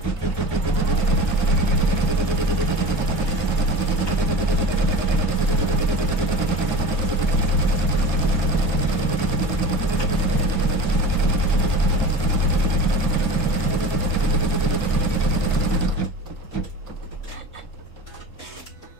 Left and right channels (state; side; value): late; right; 6.0 ms